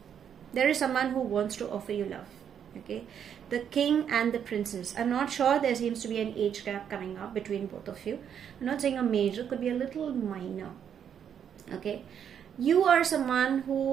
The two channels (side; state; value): left; quieter; 8.5 dB